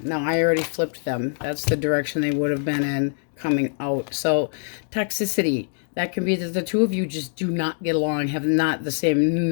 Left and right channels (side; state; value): right; silent; digital silence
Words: Now, I already flipped them. That's the direction they would have been in coming out. So, toxicity. That can be that the two of you just do not get along, have not the same